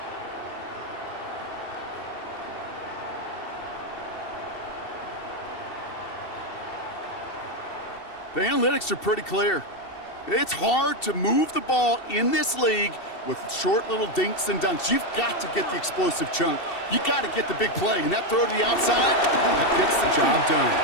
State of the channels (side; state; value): right; late; 2.7 ms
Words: The analytics are pretty clear. It's hard to move the ball in this league with short little dinks and dunks. You've got to get the explosive chunk. You got to get the big play, and that throw to the outside, that gets the job done.